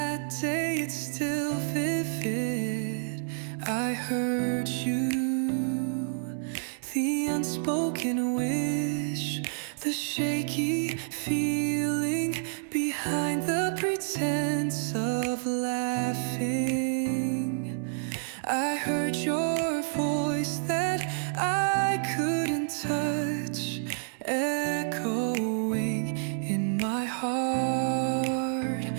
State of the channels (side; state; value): left; silent; digital silence